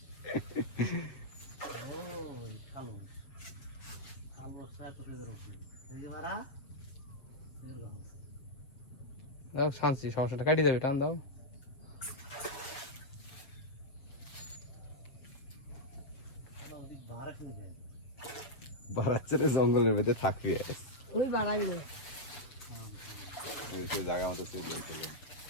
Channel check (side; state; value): right; late; 7.0 ms